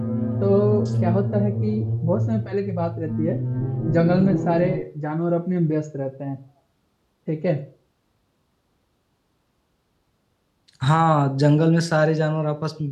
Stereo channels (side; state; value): both; identical; correlation 1.00